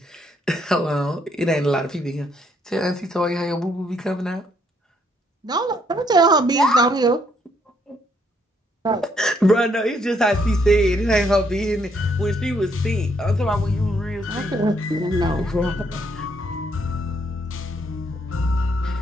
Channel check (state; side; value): normal; both; correlation 0.71